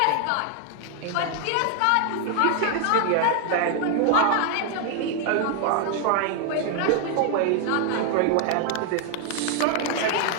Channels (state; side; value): different; both; correlation 0.00